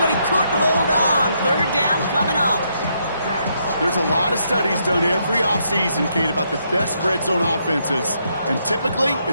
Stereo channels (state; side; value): inverted; both; correlation -0.76